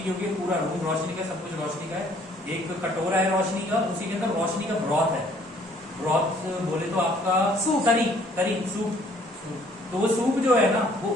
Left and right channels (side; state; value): both; normal; correlation 0.60